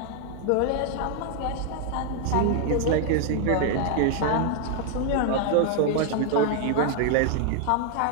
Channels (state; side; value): different; both; correlation 0.00